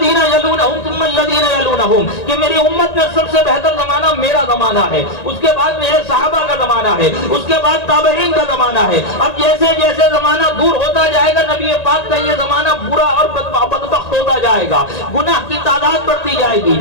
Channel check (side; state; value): right; late; 1.9 ms